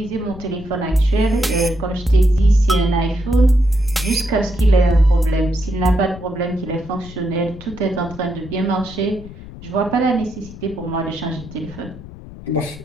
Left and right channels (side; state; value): left; noise; rumble, 15 dB below the sound